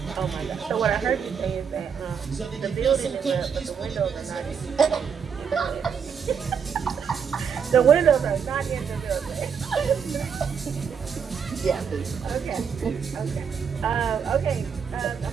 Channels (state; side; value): quieter; left; 6.8 dB